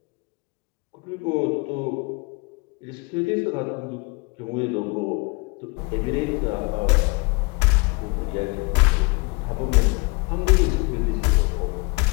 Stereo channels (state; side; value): quieter; right; 28.4 dB